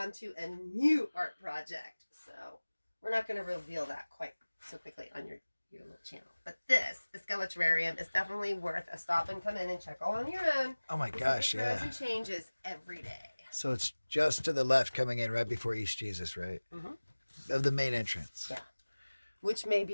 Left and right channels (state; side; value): inverted; both; correlation -1.00